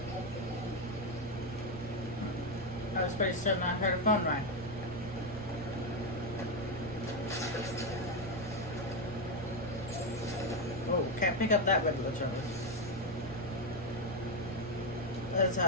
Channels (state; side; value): normal; both; correlation 0.07